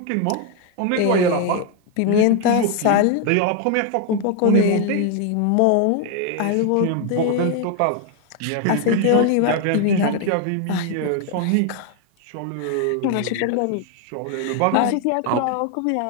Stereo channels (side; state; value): both; different; correlation 0.01